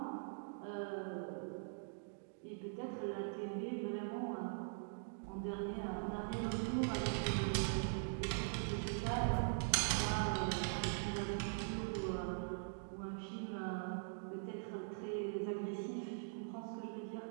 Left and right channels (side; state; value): left; silent; digital silence